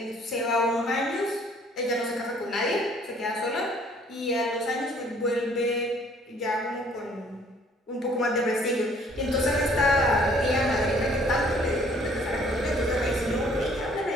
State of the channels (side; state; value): both; normal; correlation 0.58